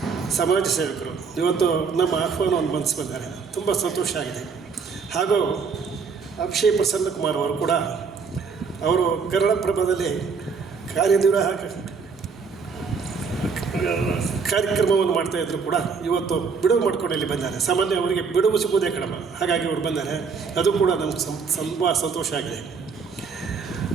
ಸಮಾಜ ಸೇವಕರು. ಇವತ್ತು ನಮ್ಮ ಆಹ್ವಾನವನ್ನು ಮನಸ್ಸು ಬಂದರೆ ತುಂಬ ಸಂತೋಷ ಆಗಿದೆ. ಹಾಗೂ ಅಕ್ಷಯ್ ಪ್ರಸನ್ನ ಕುಮಾರ್ ಅವರು ಕೂಡ ಅವರು ಕನ್ನಡಪ್ರಭದಲ್ಲಿ ಕಾರ್ಯನಿರ್ವಾಹಕ ಕಾರ್ಯಕ್ರಮವನ್ನು ಮಾಡ್ತಾಯಿದ್ರು ಕೂಡ ಇವತ್ತು ಬಿಡುವು ಮಾಡ್ಕೊಂಡು ಇಲ್ಲಿ ಬಂದ್ದಾರೆ. ಸಾಮಾನ್ಯ ಅವರಿಗೆ ಬಿಡುವು ಸಿಗುವುದೇ ಕಡಿಮೆ, ಹಾಗಾಗಿ ಅವರು ಬಂದ್ದಾರೆ. ಅದು ಕೂಡ ನಮ್ಗೆ ತುಂಬ ಸಂತೋಷ ಆಗಿದೆ.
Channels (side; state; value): left; quieter; 5.4 dB